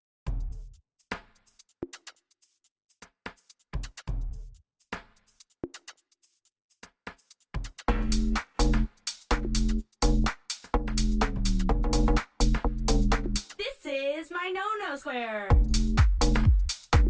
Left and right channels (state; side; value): identical; both; correlation 1.00